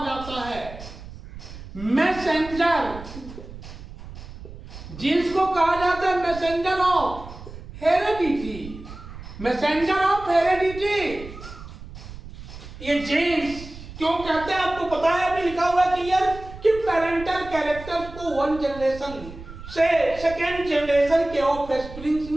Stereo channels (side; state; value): right; noise; rumble, 14 dB below the sound